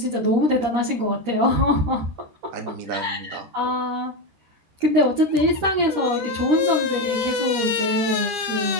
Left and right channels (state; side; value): late; left; 13 ms